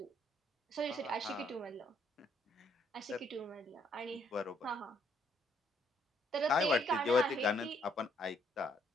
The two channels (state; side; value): normal; both; correlation 0.69